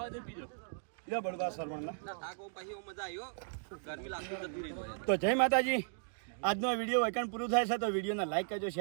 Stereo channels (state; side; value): silent; left; digital silence